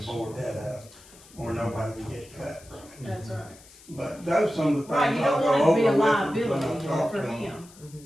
to board that up, or nobody can get cut from it. that's right. But those some of the Right, things you I'll don't go want it to be a over with liability when I talk for to them. him.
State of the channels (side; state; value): left; noise; hiss, 23 dB below the sound